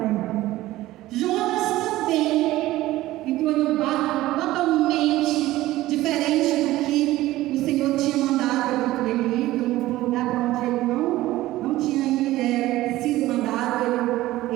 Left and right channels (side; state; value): left; quieter; 16.4 dB